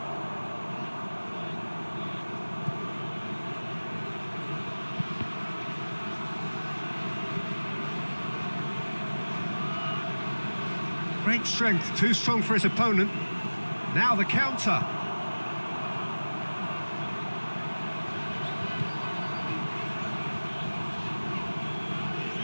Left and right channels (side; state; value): both; inverted; correlation -1.00